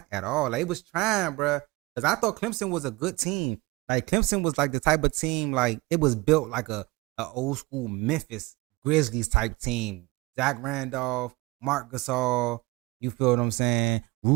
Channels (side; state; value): left; quieter; 23.0 dB